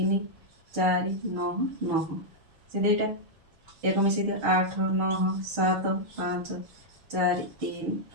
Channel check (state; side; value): late; left; 6.6 ms